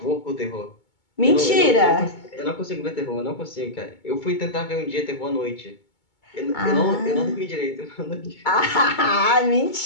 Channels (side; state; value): right; late; 2.2 ms